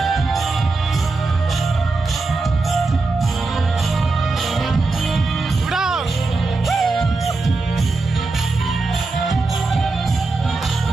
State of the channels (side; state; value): left; quieter; 3.6 dB